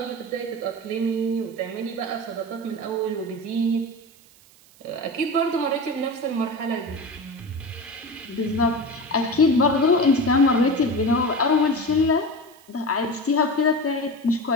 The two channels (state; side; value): noise; right; hiss, 27 dB below the sound